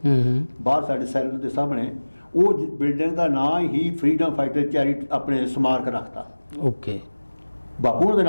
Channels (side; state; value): both; inverted; correlation -1.00